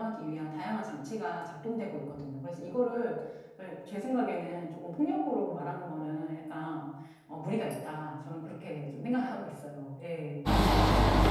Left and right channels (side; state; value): both; identical; correlation 1.00